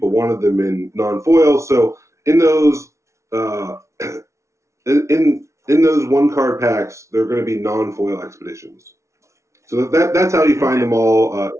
wanted them in non-foil. So in those in those one card packs, they're going to be non-foil expeditions. So that's how you find them all,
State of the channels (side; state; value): left; late; 0.14 ms